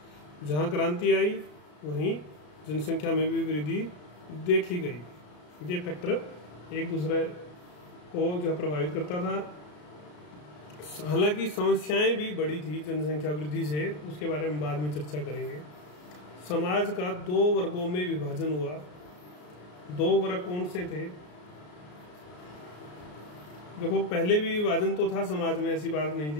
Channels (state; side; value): late; right; 33 ms